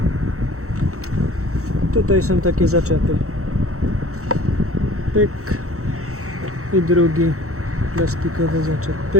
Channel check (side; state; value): left; late; 0.64 ms